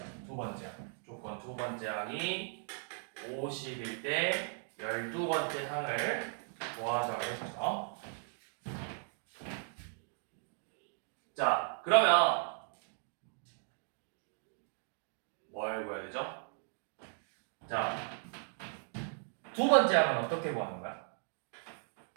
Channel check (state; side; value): silent; left; 53 dB below the other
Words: 두 번째 항. 조건 두 번째 항이 50일 때 12번째 항을 구하자고 했죠. 자, 그러면 뭘 구해야 되죠? 자, 두 번째 항은 어떻게 구하는 거야?